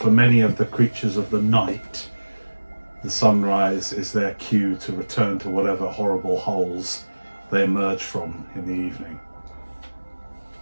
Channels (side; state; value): both; inverted; correlation -1.00